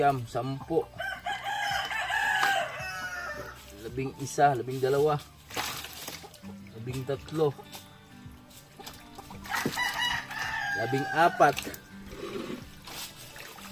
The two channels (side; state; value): both; identical; correlation 1.00